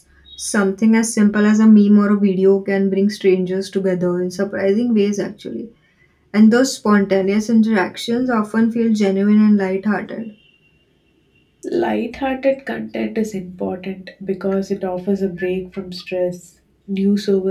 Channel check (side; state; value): both; identical; correlation 1.00